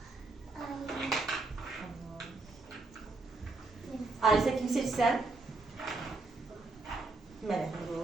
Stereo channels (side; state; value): left; quieter; 3.4 dB